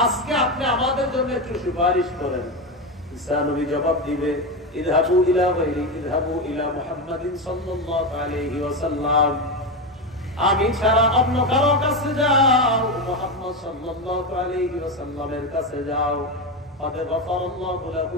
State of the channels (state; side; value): normal; both; correlation 0.14